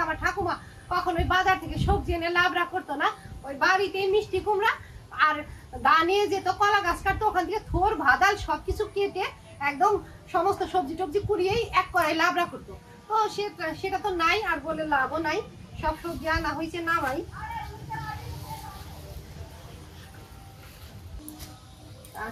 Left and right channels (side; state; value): both; identical; correlation 1.00